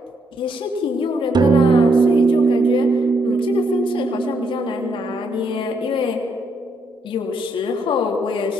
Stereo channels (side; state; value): both; normal; correlation 0.75